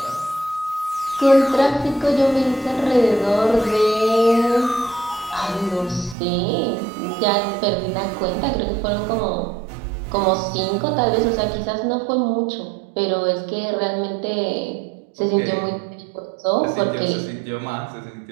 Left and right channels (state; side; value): drops out; left; at 6.2 s